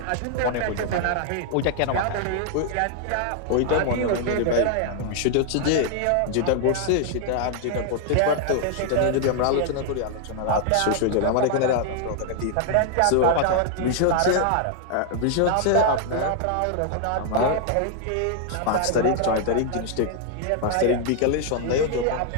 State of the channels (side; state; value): both; different; correlation 0.00